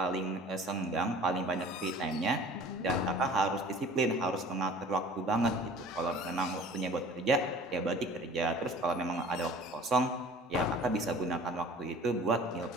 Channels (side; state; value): both; normal; correlation 0.46